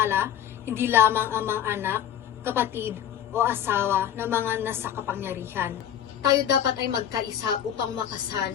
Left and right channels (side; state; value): right; quieter; 10.1 dB